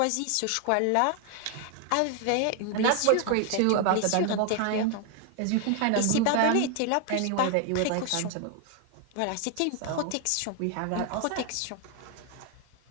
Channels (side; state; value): both; different; correlation 0.00